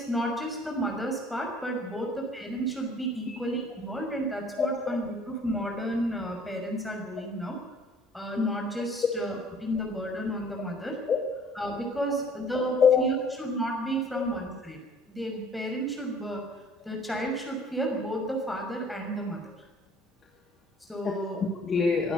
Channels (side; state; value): both; normal; correlation 0.54